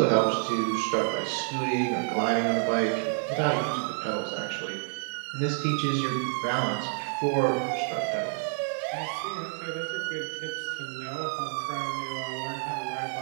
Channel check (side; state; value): left; silent; 59 dB below the other